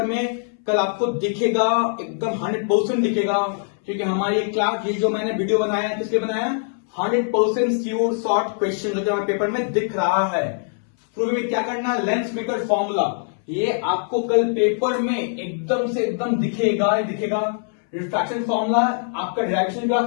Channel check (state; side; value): silent; right; 62 dB below the other